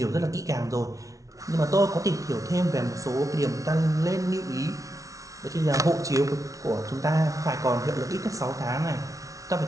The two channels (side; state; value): left; late; 0.17 ms